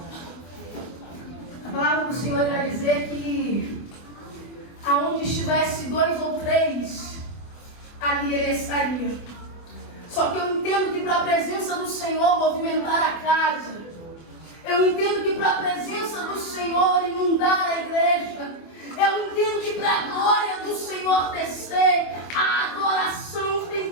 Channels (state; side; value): late; right; 24 ms